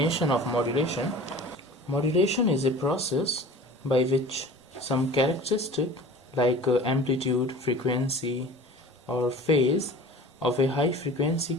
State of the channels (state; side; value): normal; both; correlation 0.41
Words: of modulation. Modulation is a process by which some characteristic like amplitude, frequency or phase of a high frequency